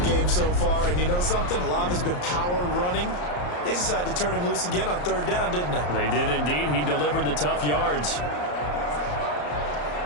game so far, and you know something? A lot of it's been power running. They decided to turn him loose again on 3rd down, didn't they? They did indeed. He delivered the tough yards.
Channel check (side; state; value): right; late; 34 ms